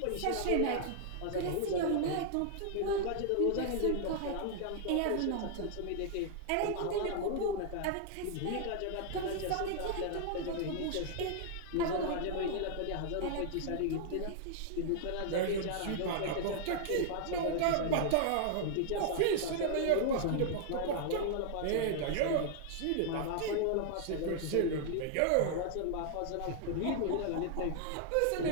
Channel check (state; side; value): different; both; correlation -0.01